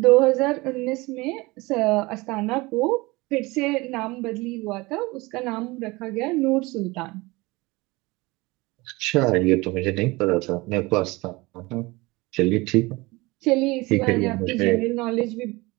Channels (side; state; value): left; quieter; 22.9 dB